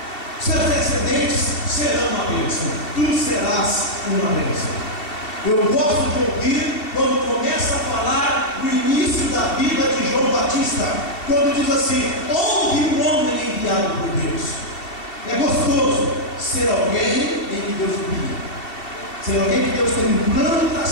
Seus descendentes serão uma bênção. Tu serás uma bênção. Eu gosto de ouvir quando começa a falar do início da vida de João Batista, quando diz assim: houve um homem enviado por Deus. É gostoso ser alguém em que Deus guia, ser alguém que Deus tem um plano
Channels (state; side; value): late; right; 2.7 ms